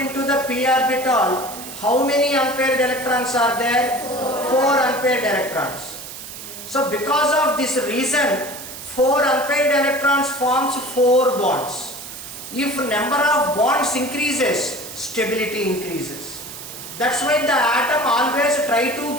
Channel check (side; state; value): right; noise; hiss, 12 dB below the sound